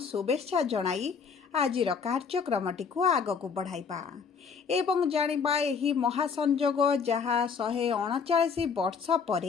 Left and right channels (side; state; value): right; quieter; 5.9 dB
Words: शुभेच्छा जणाई आजिर कार्यक्रमटी को आगक बढ़ाइबा एवं जानिबा एही महासंजोग जहाँ 139 वर्ष